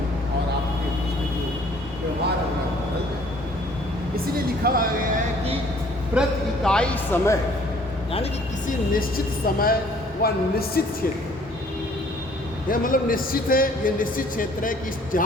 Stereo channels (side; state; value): both; normal; correlation 0.57